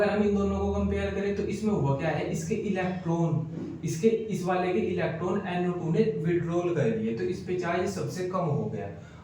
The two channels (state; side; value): identical; both; correlation 1.00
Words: हम इन दोनों को कंपेयर करें तो इसमें हुआ क्या है, इसके इलेक्ट्रॉन, इसके इस वाले के इलेक्ट्रॉन NO2 ने विड्रॉल कर लिए, तो इस पे चार्ज सबसे कम हो गया।